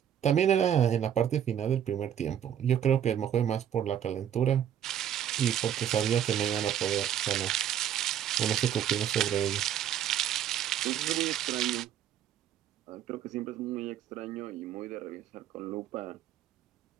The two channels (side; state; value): left; quieter; 9.9 dB